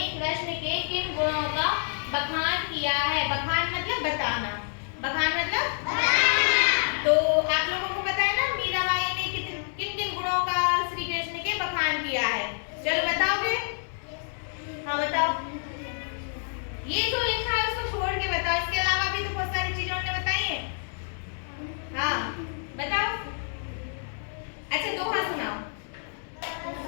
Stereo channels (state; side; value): silent; right; 59 dB below the other